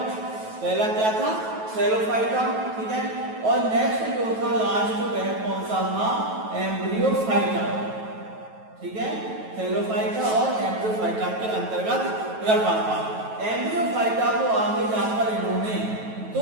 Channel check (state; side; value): late; left; 9.2 ms